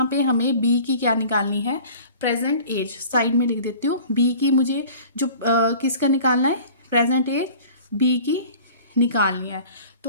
पे हमें बी की क्या निकालनी है, प्रेजेंट एज। साइड में लिख देती हूँ, बी की मुझे जो किसका निकालना है, प्रेजेंट एज बी की निकालनी है।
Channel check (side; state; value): both; inverted; correlation -0.45